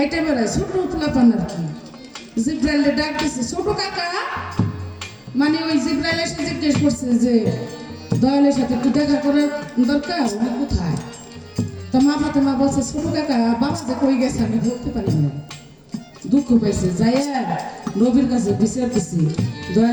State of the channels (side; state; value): both; identical; correlation 1.00